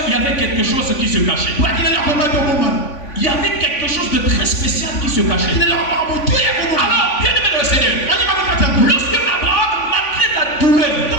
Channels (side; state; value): right; late; 3.5 ms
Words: y avait quelque chose qui se cachait. Il y avait quelque chose de très spécial qui se cachait. Alors, bien aimé dans le Seigneur, lorsque Abraham, malgré la douleur,